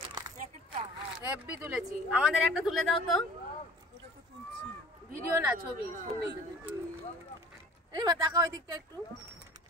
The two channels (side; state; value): both; normal; correlation 0.48